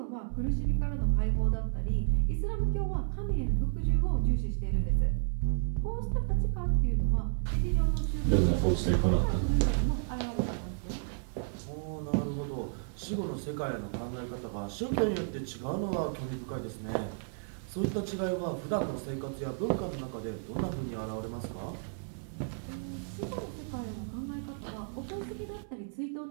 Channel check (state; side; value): silent; left; 56 dB below the other